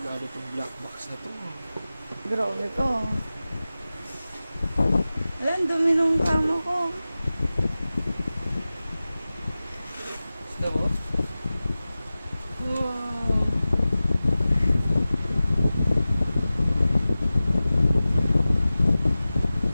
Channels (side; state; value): both; inverted; correlation -0.96